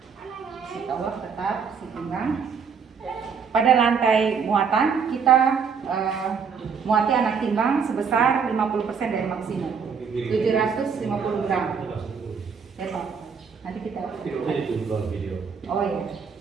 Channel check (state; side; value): quieter; left; 6.2 dB